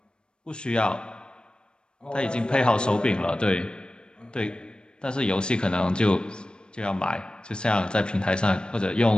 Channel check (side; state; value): right; late; 0.051 ms